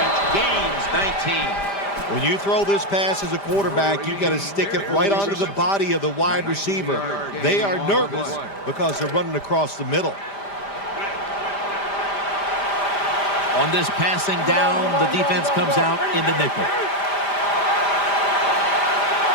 Gains 19. When you throw this pass as a quarterback, you got to stick it right onto the body of the wide receiver. They are nervous because they're running across the middle. On this passing down, the defense comes out in the nickel.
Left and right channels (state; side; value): late; right; 5.0 ms